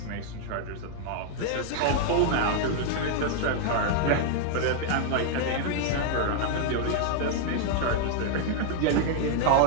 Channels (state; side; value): different; both; correlation 0.00